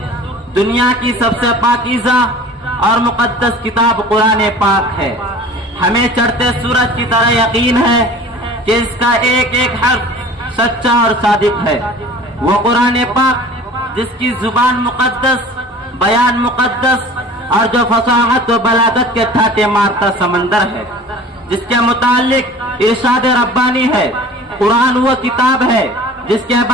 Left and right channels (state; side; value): normal; both; correlation 0.43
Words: دنیا کی سب سے پاکیزہ اور مقدس کتاب قرآن پاک ہے۔ ہمیں چڑھتے سورج کی طرح یقین ہے کہ اس کا ایک ایک حرف سچا اور صادق ہے۔ وہ قرآن پاک جس کی زبان مقدس، بیان مقدس اور جو فصاحت و بلاغت کے ٹھاٹے مارتا سمندر ہے، جس کے متعلق ارشاد ربانی ہے۔ قرآن وہ کتاب ہے جس کے